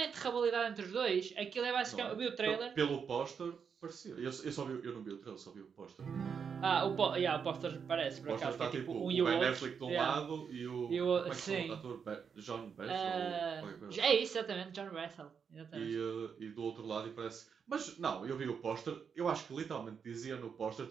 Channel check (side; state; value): left; quieter; 6.6 dB